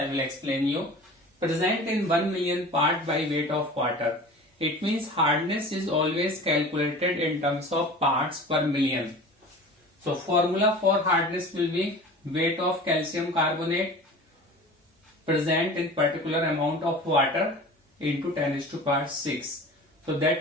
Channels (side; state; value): both; normal; correlation 0.39